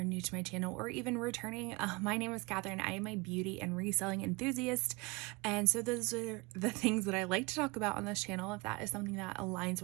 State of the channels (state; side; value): quieter; left; 25.8 dB